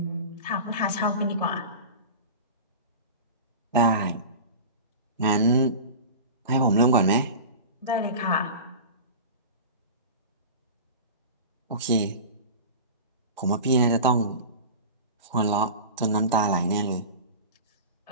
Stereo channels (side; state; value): both; inverted; correlation -0.31